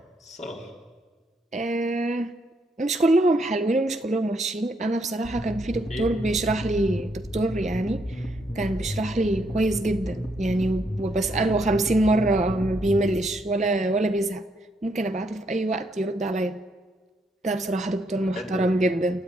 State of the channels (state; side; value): normal; both; correlation 0.75